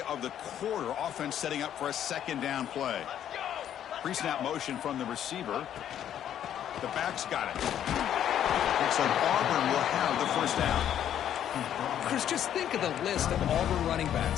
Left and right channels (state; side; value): quieter; right; 10.3 dB